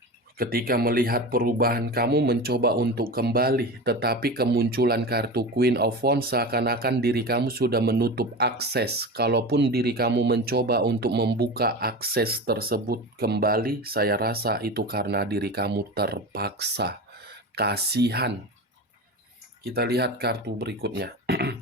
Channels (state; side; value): normal; both; correlation 0.27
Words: Ketika melihat perubahan kamu mencoba untuk kembali, tetapi kemunculan kartu Queen of Wands seakan-akan diri kamu sudah menutup akses. Kalaupun diri kamu mencoba untuk membuka akses tersebut kembali, saya rasa itu karena diri kamu terpaksa. Kasihan. Kita lihat kartu berikutnya.